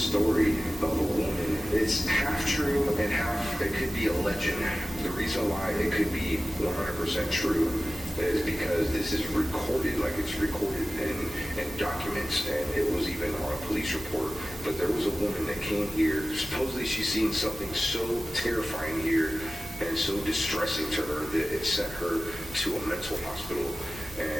of a woman. It's half true and half, it could be a legend. The reason why it could be 100% true is because this is recorded, like it's recorded in documents, and it was even on a police report. But there was a woman that came here. Supposedly she's seen something so terrifying here and so distressing to her that it sent her to a mental hospital,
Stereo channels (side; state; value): both; normal; correlation 0.96